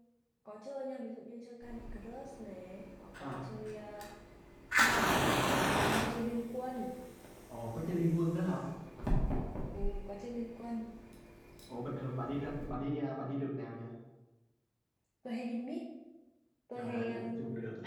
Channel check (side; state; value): both; identical; correlation 1.00